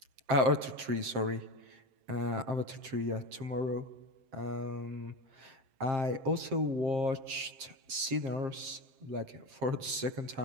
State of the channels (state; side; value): late; left; 7.5 ms